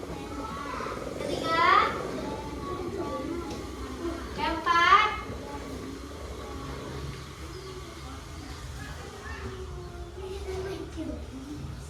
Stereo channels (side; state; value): both; identical; correlation 1.00